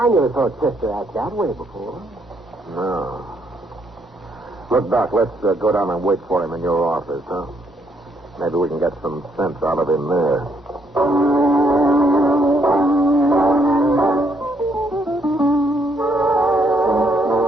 never saw Chester act that way before. No. Look, Doc, let's go down and wait for him in your office, huh? Maybe we can get some sense out of him there.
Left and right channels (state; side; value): normal; both; correlation 0.72